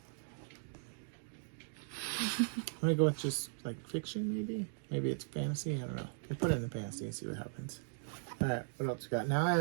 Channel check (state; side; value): silent; left; digital silence